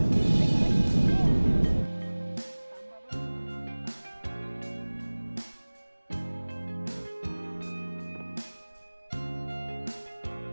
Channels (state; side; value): inverted; both; correlation -1.00